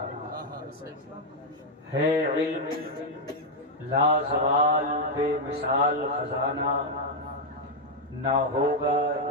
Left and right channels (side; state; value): both; normal; correlation 0.00